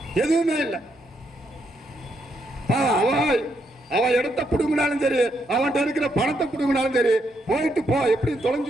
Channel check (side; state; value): both; normal; correlation 0.77